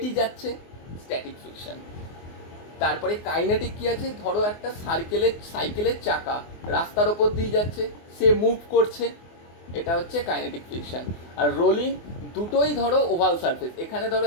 যাচ্ছে, স্ট্যাটিক ফ্রিকশন। তারপরে কাইনেটিক কি আছে, ধরো একটা সাইকেলের চাকা রাস্তার ওপর দিয়ে যাচ্ছে, সে মুভ করছে, এটা হচ্ছে কাইনেটিক ফ্রিকশন। আর রোলিং, দুটোই ধরো ওভাল সারফেস, এখানে ধরো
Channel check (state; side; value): late; right; 24 ms